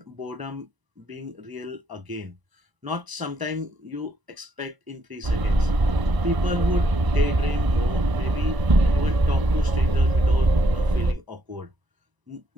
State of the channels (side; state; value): left; late; 1.0 ms